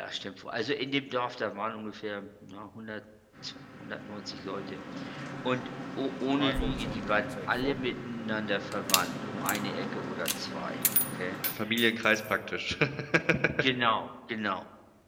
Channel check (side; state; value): both; identical; correlation 1.00